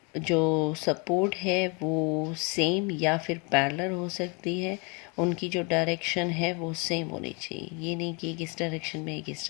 जो सपोर्ट है वो सेम या फिर पैरेलल हो सकती है, उनकी जो डायरेक्शन है वो सेम होनी चाहिए, ये नहीं कि एक इस डायरेक्शन में एक इस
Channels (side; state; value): right; quieter; 31.8 dB